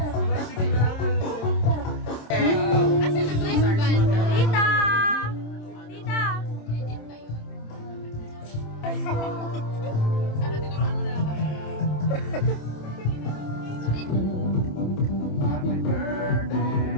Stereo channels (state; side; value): late; right; 27 ms